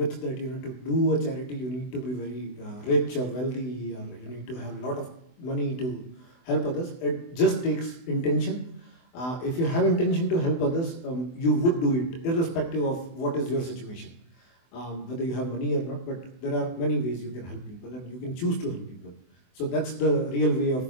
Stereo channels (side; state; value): right; late; 24 ms